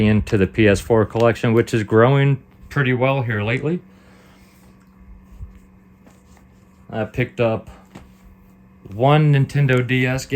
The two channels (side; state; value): both; identical; correlation 1.00